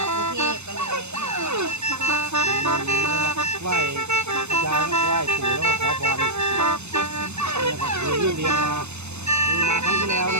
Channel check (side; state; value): left; late; 0.81 ms